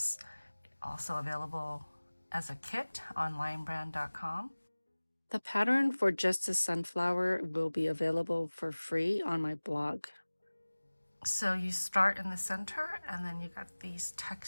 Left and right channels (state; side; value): inverted; both; correlation -1.00